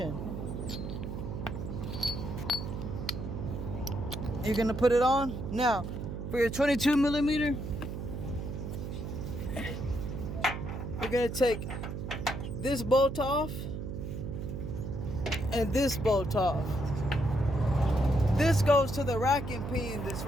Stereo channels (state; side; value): noise; right; hum, 6 dB below the sound